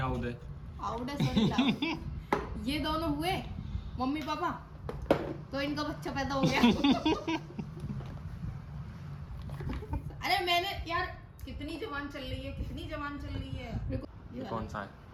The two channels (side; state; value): both; identical; correlation 1.00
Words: है। आउट है, सॉरी लाउड। ये दोनों हुए मम्मी पापा, तो इनका बच्चा पैदा हो गया। अरे मैंने यार कितनी जवान चल रही है, कितनी जवान चल रही है। ये कौन सा है,